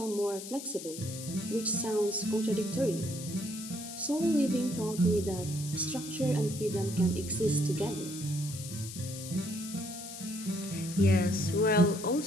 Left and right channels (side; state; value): left; noise; hiss, 11 dB below the sound